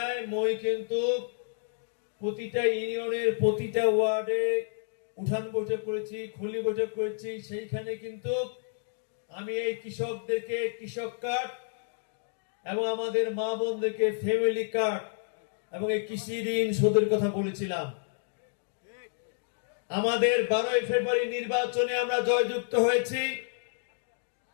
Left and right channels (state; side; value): silent; right; digital silence